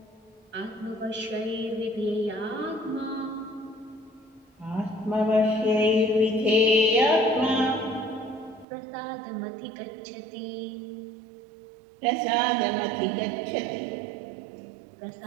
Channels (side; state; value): left; drops out; at 8.7 s